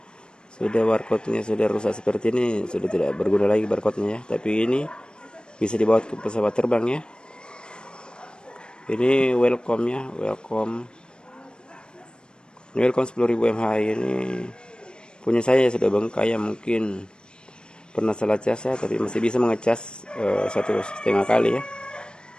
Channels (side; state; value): right; late; 0.051 ms